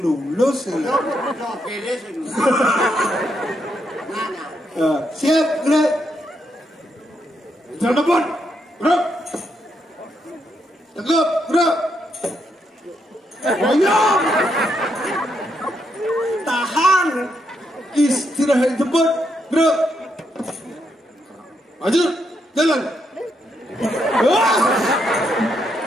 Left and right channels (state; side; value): normal; both; correlation 0.79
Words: ya. Siap, gerak. Lejang depan, gerak. Tegap, gerak. Ayo. Tahan. Istirahat cepat, gerak. Maju, jalan.